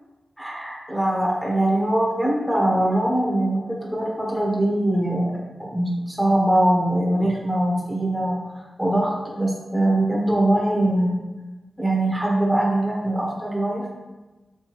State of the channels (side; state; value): both; normal; correlation 0.94